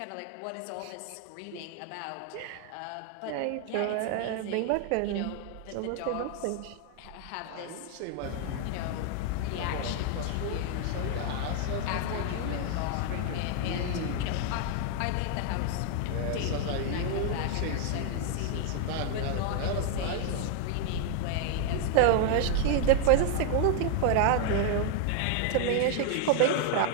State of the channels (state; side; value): different; both; correlation 0.00